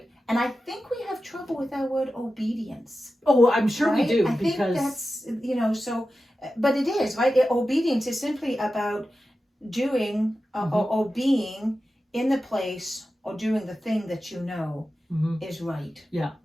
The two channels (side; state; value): both; normal; correlation 0.93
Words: And I think we have trouble with that word obedience. Oh, I'm sure we do. I think that's, you know, so... But it is, right? Obedience is simply about doing or being in the place or doing the thing that you know is right. Yeah.